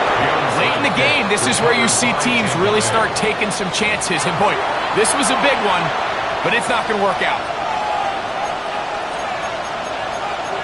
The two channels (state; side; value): identical; both; correlation 1.00